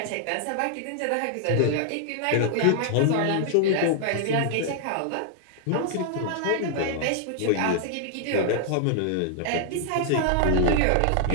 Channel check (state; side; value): different; both; correlation -0.01